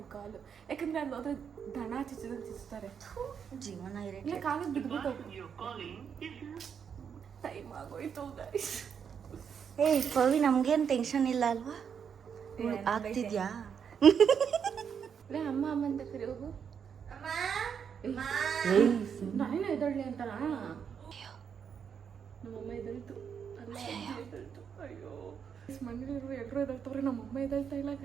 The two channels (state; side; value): quieter; left; 7.3 dB